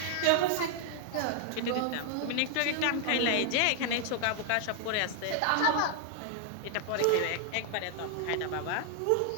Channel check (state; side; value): different; both; correlation 0.00